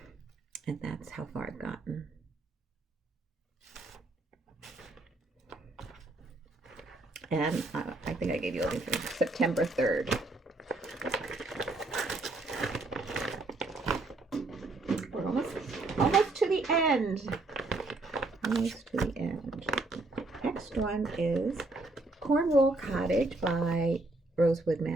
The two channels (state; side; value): quieter; left; 3.0 dB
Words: And that's how far I've gotten. And I think I gave you everything. September 3rd. We're almost to the end. Almost to the end. Next one is Cornwall Cottage by Rosewood